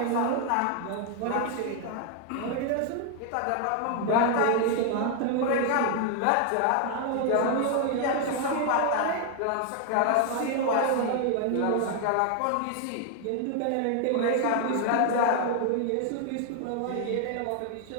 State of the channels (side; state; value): both; different; correlation 0.00